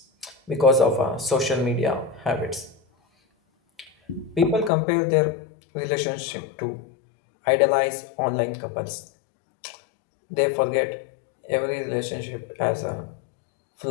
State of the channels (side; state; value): right; drops out; at 4.7 s